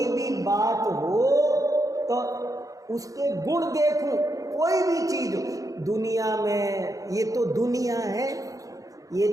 भी बात हो तो उसके गुण देखूं, कोई भी चीज हो दुनिया में। ये तो दुनिया है, ये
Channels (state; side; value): late; left; 0.17 ms